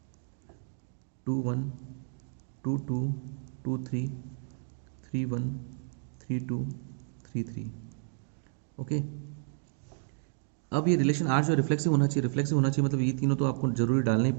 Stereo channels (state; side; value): silent; left; digital silence